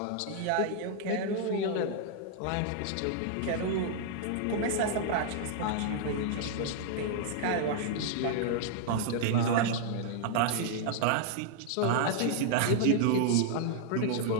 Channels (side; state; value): both; different; correlation -0.01